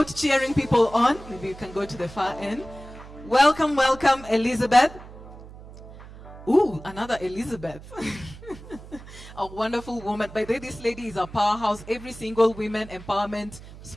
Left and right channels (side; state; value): right; noise; hum, 17 dB below the sound